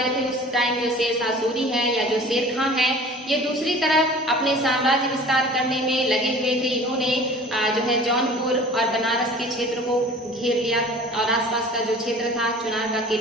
थे, उस टाइम जो शेरशाह सूरी है या जो शेर खां है ये दूसरी तरफ अपने साम्राज्य विस्तार करने में लगे हुए थे। इन्होंने जो है जौनपुर और बनारस के क्षेत्र को घेर लिया और आसपास का जो क्षेत्र था, चुनार का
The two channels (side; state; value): both; normal; correlation 0.44